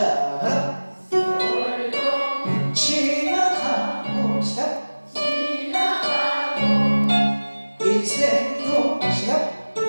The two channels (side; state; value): both; inverted; correlation -1.00